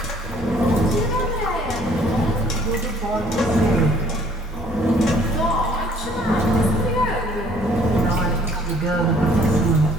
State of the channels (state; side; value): normal; both; correlation 0.58